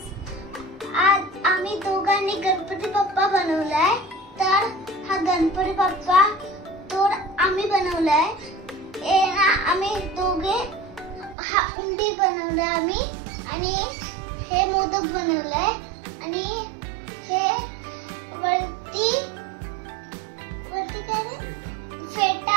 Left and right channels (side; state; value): left; drops out; at 11.4 s